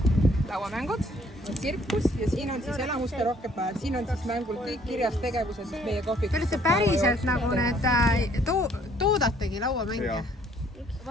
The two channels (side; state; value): both; normal; correlation 0.61